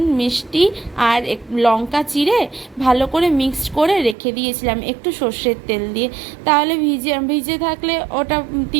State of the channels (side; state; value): left; drops out; at 4.2 s